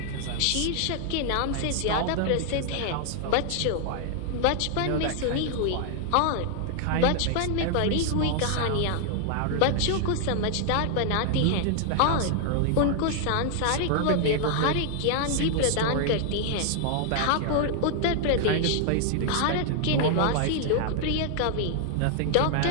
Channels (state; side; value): different; both; correlation 0.00